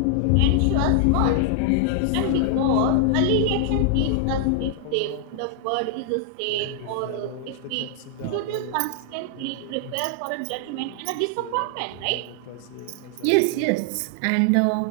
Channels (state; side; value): different; both; correlation 0.00